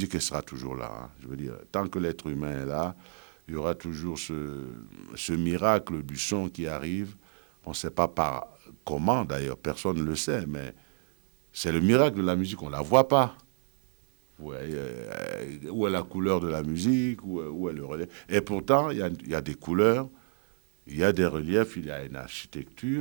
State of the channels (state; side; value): silent; left; digital silence